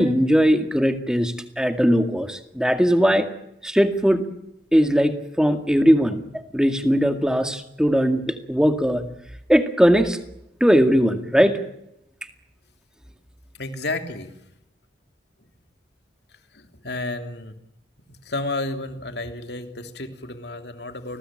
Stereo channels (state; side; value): normal; both; correlation 0.91